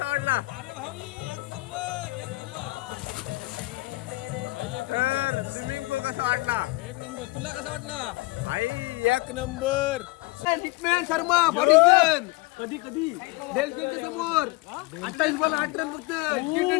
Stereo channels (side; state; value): right; quieter; 22.8 dB